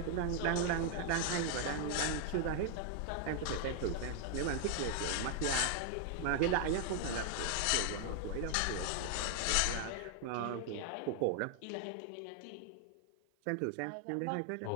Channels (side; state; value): both; different; correlation 0.00